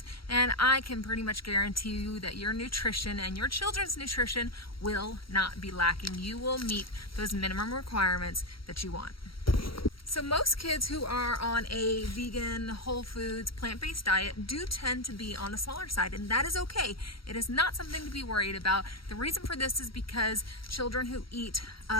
and I can pretty much guarantee you that your nutrition and your children's nutrition will not be lacking. You will meet those minimum requirements that you want. So most kids who are on a vegan, whole foods, plant-based diet do tend to be on the smaller side, and that is okay. It is not something to be worried about. The reason for this is because children who eat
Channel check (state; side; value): late; right; 0.74 ms